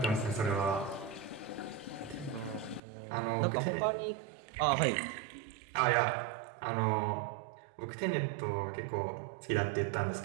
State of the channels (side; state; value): left; drops out; at 2.8 s